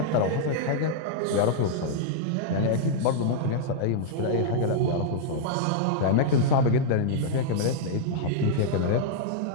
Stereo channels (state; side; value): different; both; correlation -0.02